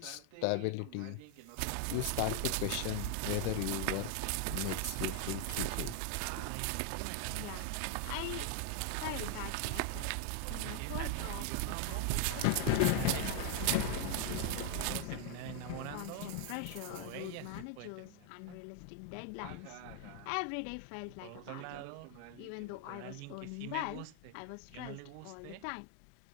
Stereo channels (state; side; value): different; both; correlation 0.00